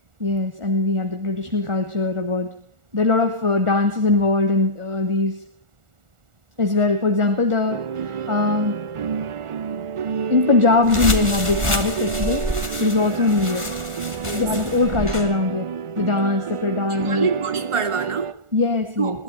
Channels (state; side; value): late; left; 1.4 ms